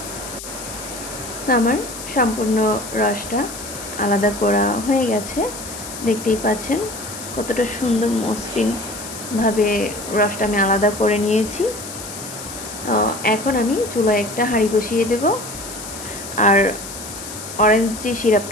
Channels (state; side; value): noise; left; hiss, 11 dB below the sound